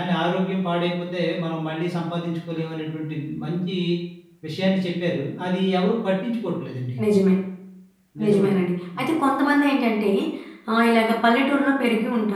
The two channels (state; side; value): identical; both; correlation 1.00